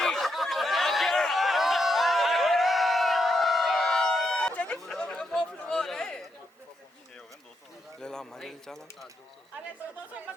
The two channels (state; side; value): normal; both; correlation 0.81